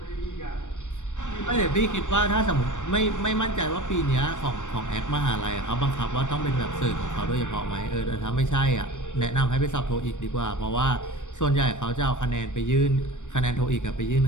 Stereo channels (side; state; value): right; late; 0.85 ms